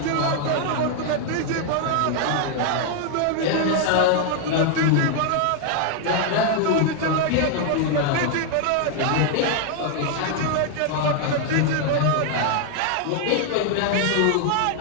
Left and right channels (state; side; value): different; both; correlation 0.00